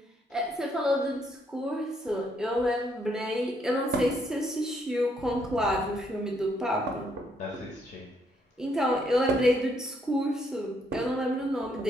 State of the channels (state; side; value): normal; both; correlation 0.72